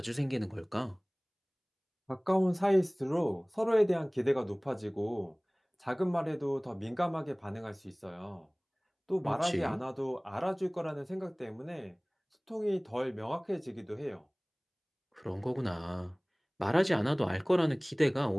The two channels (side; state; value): both; identical; correlation 1.00